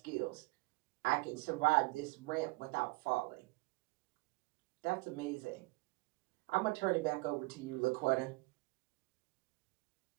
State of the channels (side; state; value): left; quieter; 25.0 dB